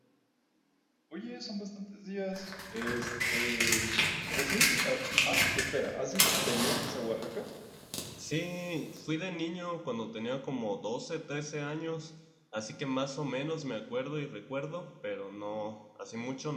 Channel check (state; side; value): identical; both; correlation 1.00